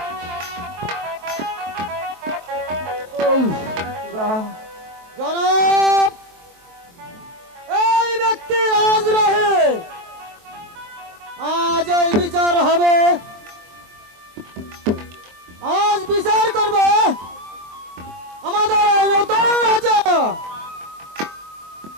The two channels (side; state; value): left; late; 23 ms